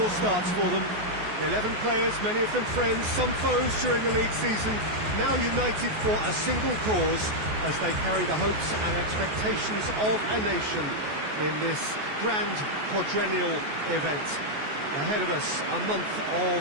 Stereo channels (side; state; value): left; late; 14 ms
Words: starts for them. 11 players, many of them friends, some foes during the league season, now united for a single cause as they carry the hopes and expectations of a nation in this grand quadrennial event. Ahead of us, a month